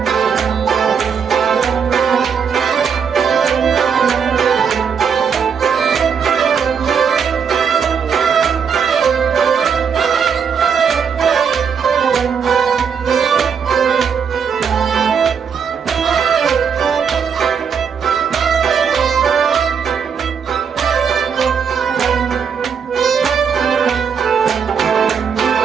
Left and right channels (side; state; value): left; quieter; 6.7 dB